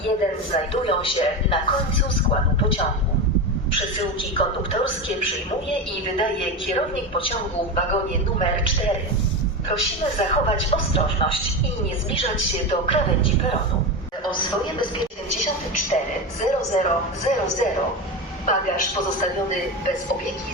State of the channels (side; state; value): both; normal; correlation 0.20